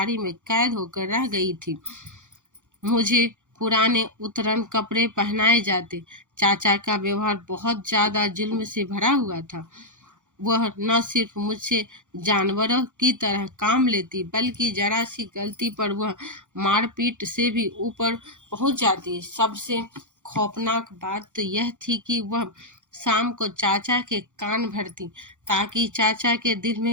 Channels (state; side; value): late; left; 0.85 ms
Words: में कैद होकर रह गई थी। मुझे पुराने उतरन कपड़े पहनाए जाते। चाचा का व्यवहार बहुत ज्यादा जुल्म से भरा हुआ था। वह न सिर्फ मुझसे जानवरों की तरह काम लेती बल्कि जरा सी गलती पर वह मारपीट से भी ऊपर पहुंच जाती। सबसे खौफनाक बात तो यह थी कि वह शाम को चाचा के कान भरती ताकि चाचा के दिल